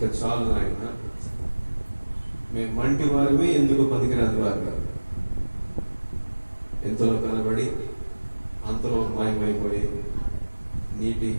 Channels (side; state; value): both; inverted; correlation -1.00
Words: చాలు నాయన, మేము మంటి వారివి, ఎందుకు పనికిరాని వారు, ఎంతలో కనబడి అంతలో మాయమైపోయి నీటి